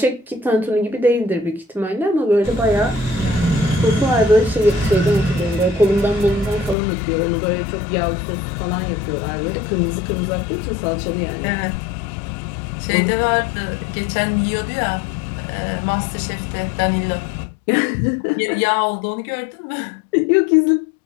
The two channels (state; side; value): drops out; right; at 6.8 s